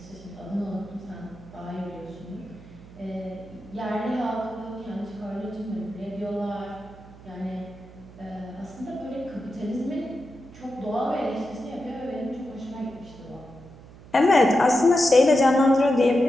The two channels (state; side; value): noise; right; hum, 20 dB below the sound